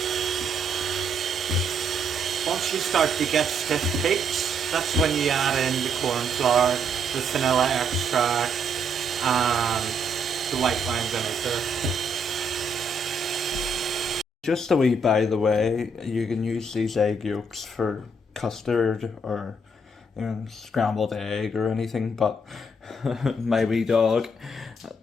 Once you start to get stiff peaks, that's when you add in the corn flour, the vanilla extract, and the white wine vinegar. Just a wee by the way, you can use these egg yolks for custard or scrambled egg or anything, but my wee dog,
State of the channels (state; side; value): normal; both; correlation 0.72